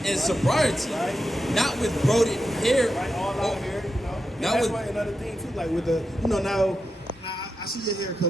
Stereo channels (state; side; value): normal; both; correlation 0.87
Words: and sobriety, not with braided hair. All out here, you know. And Now that's with- why another thing too, like with the, you know, now I see your hair